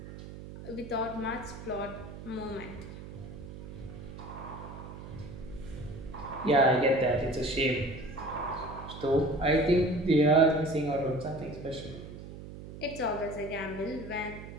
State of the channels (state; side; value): noise; right; hum, 12 dB below the sound